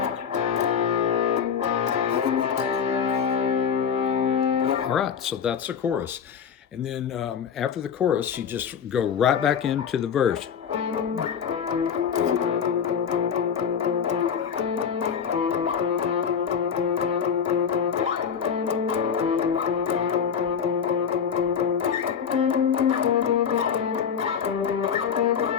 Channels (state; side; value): quieter; right; 7.3 dB